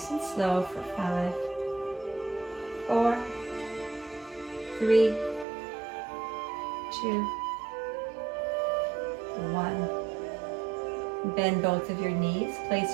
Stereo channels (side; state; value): left; drops out; at 5.5 s